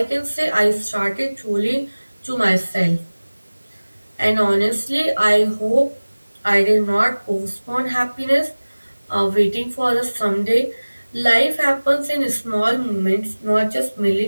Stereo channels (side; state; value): both; inverted; correlation -1.00